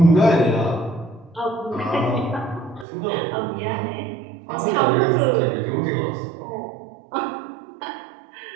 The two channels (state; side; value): drops out; left; at 2.9 s